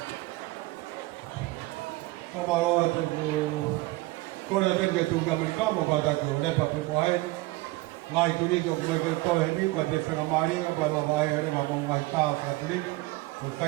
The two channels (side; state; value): left; quieter; 20.6 dB